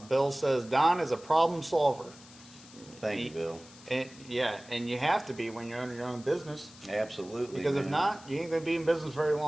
Bill says Don is a problem solver. Thank you, Bill. And you have to be when you're owning your own business. Absolutely. Because if man. not, you ain't gonna be in business very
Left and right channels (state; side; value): noise; left; hiss, 21 dB below the sound